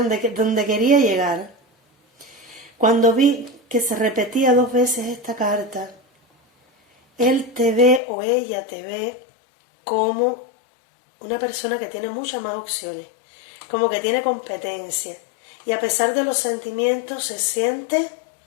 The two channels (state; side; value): drops out; right; at 8.0 s